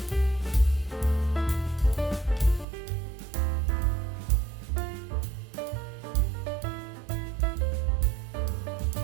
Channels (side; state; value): left; drops out; at 2.7 s